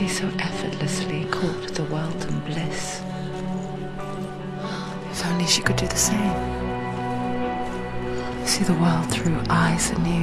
so effortlessly court the world and bliss? If only she could do the same. See the world through eyes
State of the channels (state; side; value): identical; both; correlation 1.00